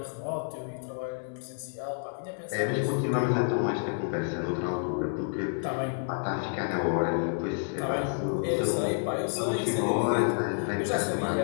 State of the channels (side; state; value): right; silent; digital silence